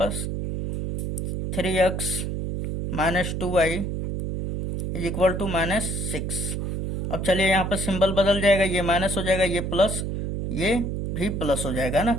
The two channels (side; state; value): right; noise; hum, 3 dB below the sound